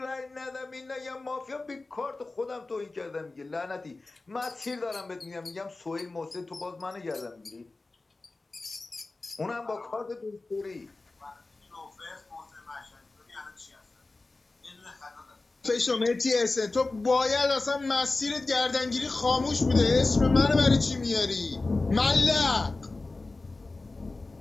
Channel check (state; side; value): quieter; right; 3.3 dB